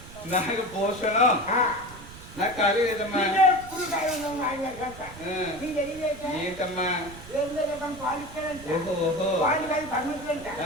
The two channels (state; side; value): noise; right; rumble, 16 dB below the sound